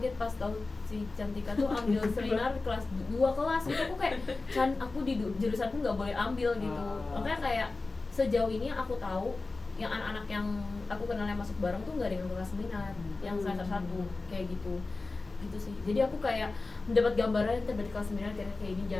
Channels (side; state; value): right; quieter; 3.6 dB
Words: pas tahu si Cantika tuh ambil seminar kelas 2 kelas gitu. Aku kayak aku di jurusanku nggak boleh ambil gitu. Makanya kayak sejauh ini aku tahu yang anak-anak yang aku kenal yang masuk bareng tuh nggak ada yang kelas minat, yang semester 1 kayak gitu sih. Jadi aku kayak mendapat gambaran tiba di kelas 9 kayak ini,